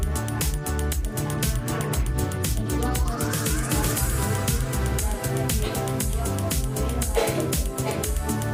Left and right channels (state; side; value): identical; both; correlation 1.00